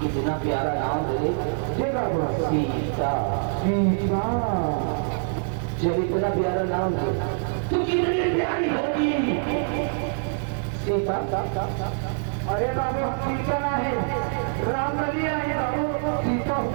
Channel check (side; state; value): left; silent; digital silence